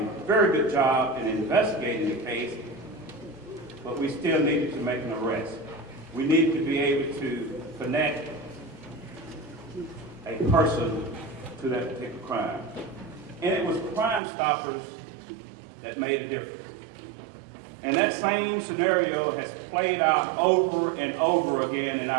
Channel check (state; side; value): drops out; left; at 14.2 s